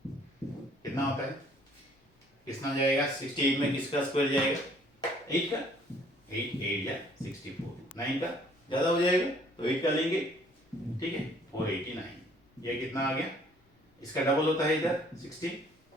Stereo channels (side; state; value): both; normal; correlation 0.59